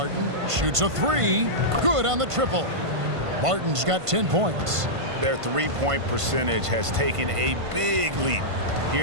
Shoots a 3. Good on the triple. Barton's got 10 points. Their three-point percentage has taken a big leap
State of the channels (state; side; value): late; left; 1.5 ms